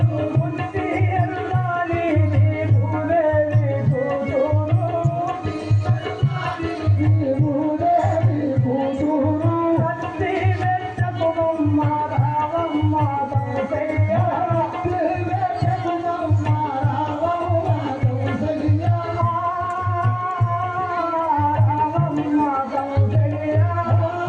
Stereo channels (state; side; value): identical; both; correlation 1.00